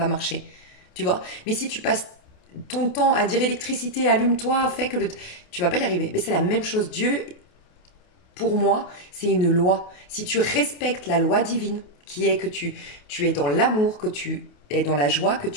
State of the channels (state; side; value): late; right; 28 ms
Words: marcher. Tu vois? Mais si tu passes ton temps à dire électricité, allume-toi, fais que tu vas pas y arriver. Mais c'est la même chose. Dieu, pour moi, c'est une loi. Si tu respectes la loi divine, qui est que tu es dans l'amour, que tu es dans la joie, que